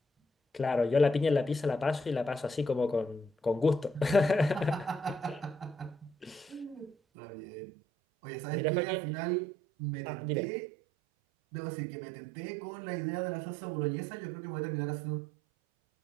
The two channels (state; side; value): drops out; left; at 7.0 s